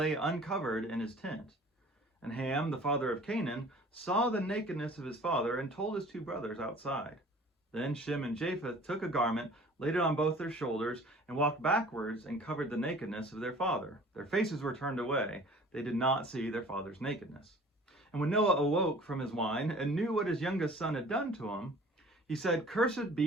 uncovered in his tent. And Ham, the father of Canaan, saw the nakedness of his father and told his two brothers outside. Then Shem and Japheth took a garment, laid it on both their shoulders, and walked backwards and covered the nakedness of their father. Their faces were turned away. They did not see their father's nakedness. And when Noah awoke from his wine and knew what his youngest son had done to him, he said, "Cursed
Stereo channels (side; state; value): both; normal; correlation 0.48